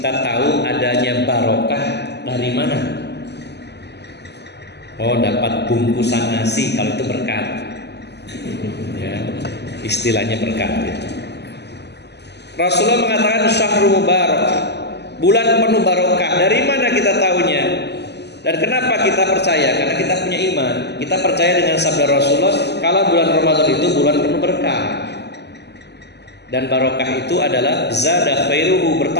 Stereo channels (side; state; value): right; late; 0.50 ms